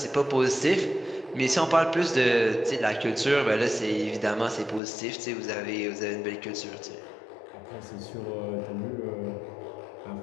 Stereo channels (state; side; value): drops out; right; at 4.8 s